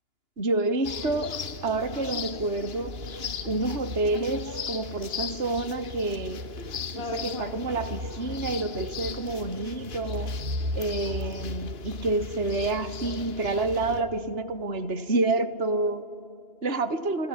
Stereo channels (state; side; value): late; left; 2.9 ms